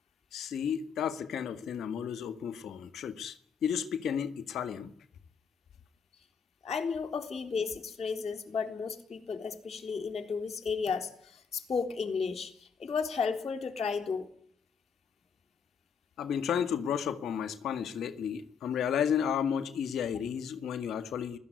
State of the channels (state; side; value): quieter; right; 6.6 dB